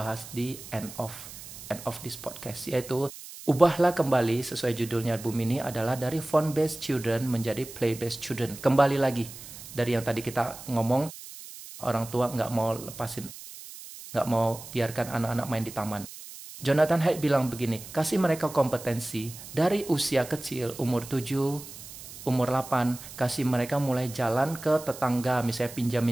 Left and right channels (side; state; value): right; noise; hiss, 14 dB below the sound